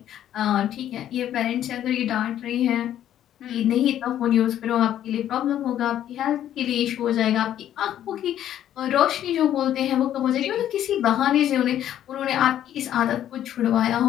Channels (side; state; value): right; quieter; 11.3 dB